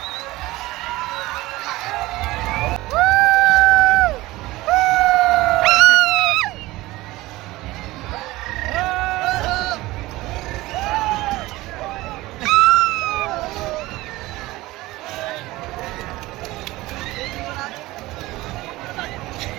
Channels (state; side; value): quieter; left; 18.9 dB